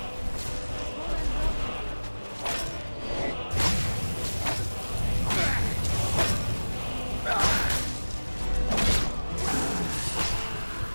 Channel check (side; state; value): both; inverted; correlation -1.00